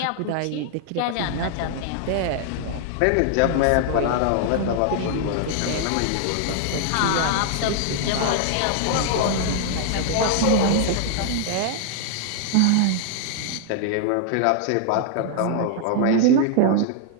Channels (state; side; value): different; both; correlation 0.00